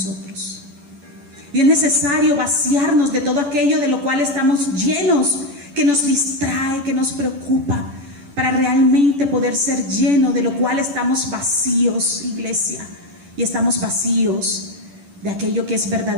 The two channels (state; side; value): late; left; 10 ms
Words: Y es necesario vaciarnos de todo aquello de lo cual estamos llenos, que nos distrae, que nos preocupa, para realmente poder ser lleno de lo cual estamos vacíos, iglesia. Y estamos vacíos de aquello que es